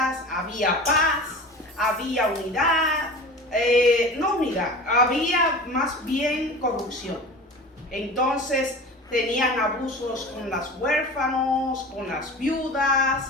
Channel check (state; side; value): normal; both; correlation 0.35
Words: había paz, había unidad, no unidad, había más bien corrupción. Entonces tenían abusos con los huérfanos, con las